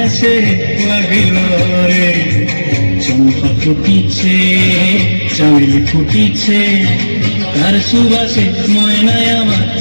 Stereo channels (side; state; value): both; inverted; correlation -1.00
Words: লাগিল রে। চম্পা ফুটিছে চামেলি ফুটিছে তার সুবাসে ময়নায় আমার